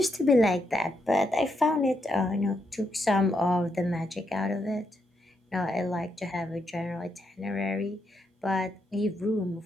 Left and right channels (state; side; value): normal; both; correlation 0.80